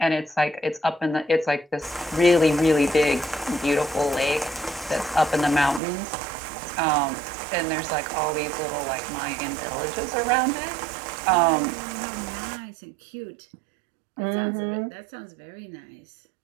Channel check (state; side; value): drops out; left; at 5.8 s